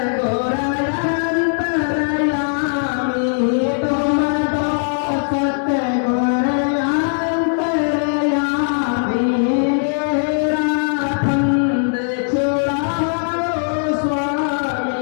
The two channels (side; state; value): right; silent; digital silence